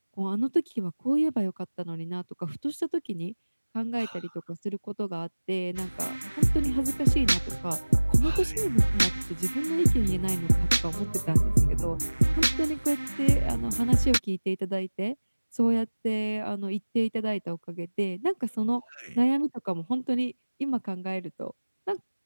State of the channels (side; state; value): both; inverted; correlation -1.00